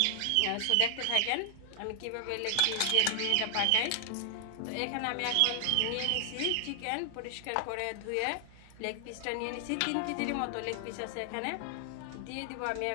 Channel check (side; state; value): both; different; correlation 0.00